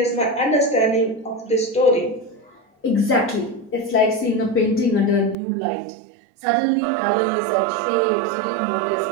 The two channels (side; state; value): left; drops out; at 5.4 s